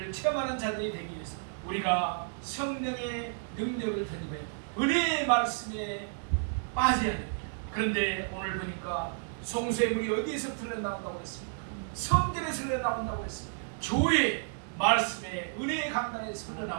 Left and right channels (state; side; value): silent; left; digital silence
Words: 체험하는 자들이 되기 위해서 우리가 성령의 능력을 되돌아야 됩니다. 은혜의 말씀에 빠져야 됩니다. 그런데 오늘 보니까 성소의 물이 어디에서 흘러나온다고 했습니까? 성전에서 흘러나온다고 했습니다. 교회 말씀에 은혜의 강단에서